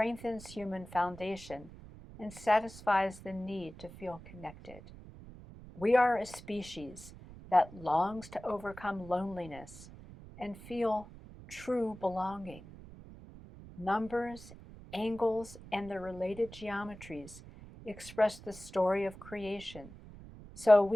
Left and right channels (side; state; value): right; noise; rumble, 17 dB below the sound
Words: human foundation and satisfies the need to feel connected. We are a species that longs to overcome loneliness and feel true belonging. Numbers, angles, and the related geometries express the story of creation so